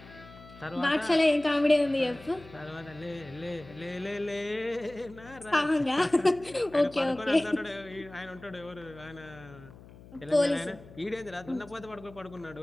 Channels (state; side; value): noise; left; hum, 20 dB below the sound